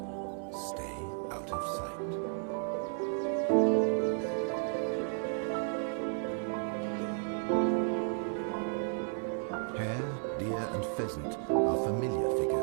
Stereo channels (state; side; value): silent; left; 56 dB below the other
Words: stay out of sight. Hare, deer and pheasant are familiar